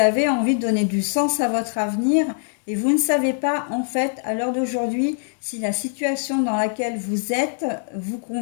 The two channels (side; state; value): right; silent; 64 dB below the other